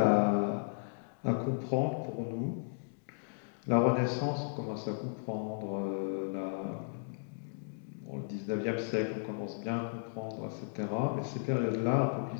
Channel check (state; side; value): silent; right; digital silence